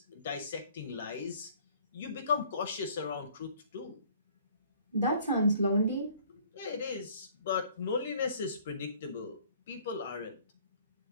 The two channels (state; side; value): inverted; both; correlation -0.56